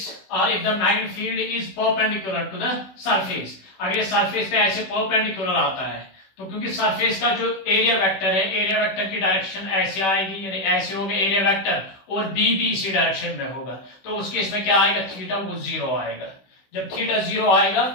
or if the magnetic field is perpendicular to the surface, अगर ये surface पे ऐसे perpendicular आता है तो क्योंकि surface का जो एरिया वेक्टर है, एरिया वेक्टर की डायरेक्शन ऐसे आएगी, यानी ऐसे होगा एरिया वेक्टर, और बी भी इसी डायरेक्शन में होगा, तो उस केस में क्या आएगा, थीटा वो 0 आएगा। जब थीटा 0 आएगा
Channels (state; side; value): late; right; 16 ms